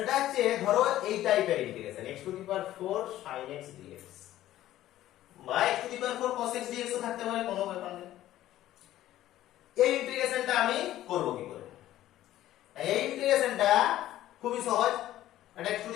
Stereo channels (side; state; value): right; quieter; 13.8 dB